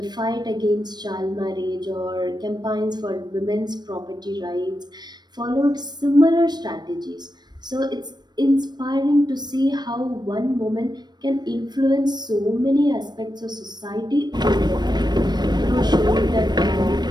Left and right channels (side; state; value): left; late; 0.20 ms